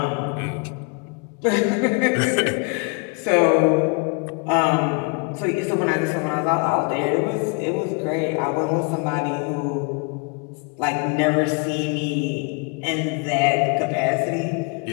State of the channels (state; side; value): quieter; right; 33.7 dB